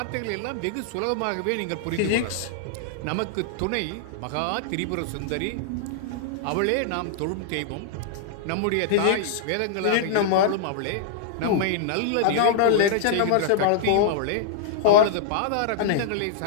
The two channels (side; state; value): both; different; correlation -0.01